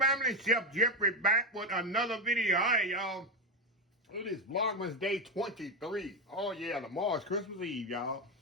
Chef Jeffrey back with another video. All right, y'all. It is Vlogmas day 23. Oh, yeah, tomorrow's Christmas Eve, y'all.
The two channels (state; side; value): normal; both; correlation 0.12